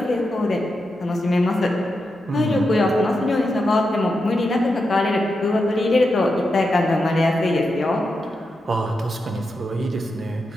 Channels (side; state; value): both; normal; correlation 0.87